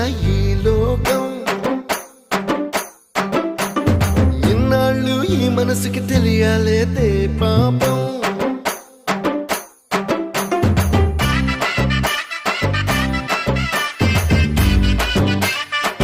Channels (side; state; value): both; identical; correlation 1.00